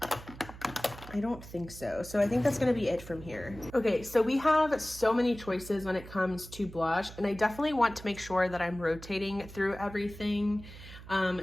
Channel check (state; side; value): noise; right; hum, 15 dB below the sound